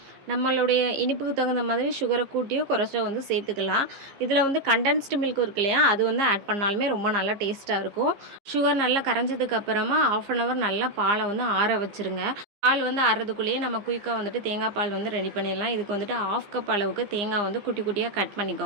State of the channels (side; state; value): left; late; 15 ms